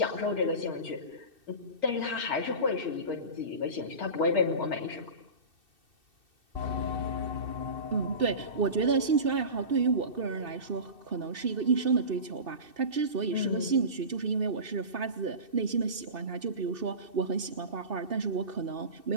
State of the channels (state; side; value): late; left; 2.6 ms